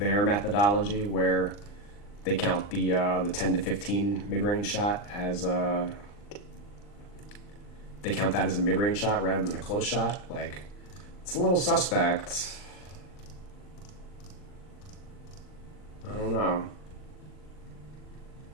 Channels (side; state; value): right; late; 39 ms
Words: methodology where they count the 10 to 15 mid-range shot as they count that as a mid-range shot rather than a close shot. Like, it's a little suspect. I don't know.